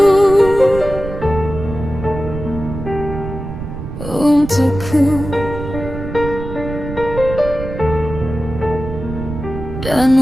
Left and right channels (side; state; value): right; noise; rumble, 8 dB below the sound